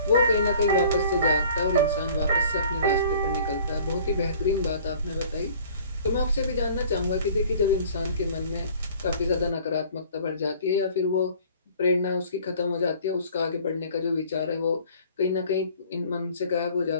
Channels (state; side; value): inverted; both; correlation -0.51